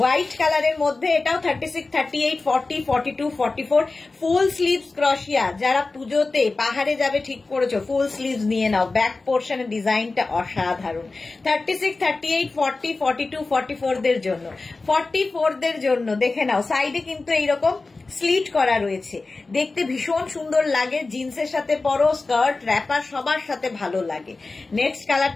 কালারের মধ্যে এটাও 36, 38, 40, 42, 44 ফুল স্লিভস ক্রোশিয়া। যারা পুজোতে পাহাড়ে যাবে ঠিক করেছো, ফুল স্লিভস নিয়ে নাও। ব্যাক পোর্শনের ডিজাইনটা অসাধারণ। 36, 38, 40, 42, 44 দের জন্য। 44 দের জন্য দেখে নাও, সাইডে কিন্তু এইরকম স্লিট করা রয়েছে, দেখতে ভীষণ সুন্দর লাগে। জিন্সের সাথে পরো, স্কার্ট, র্যাপার সবার সাথে ভালো লাগে। নেক্সট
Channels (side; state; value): right; quieter; 3.6 dB